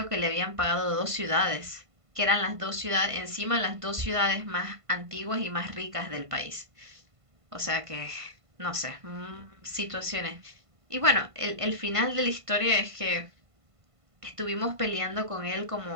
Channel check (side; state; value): left; late; 1.5 ms